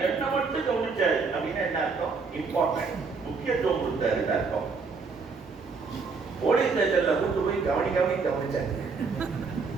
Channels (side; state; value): left; quieter; 4.7 dB